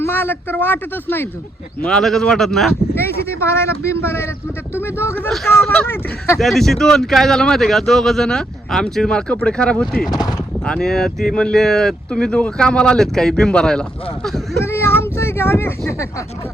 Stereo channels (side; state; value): both; normal; correlation 0.77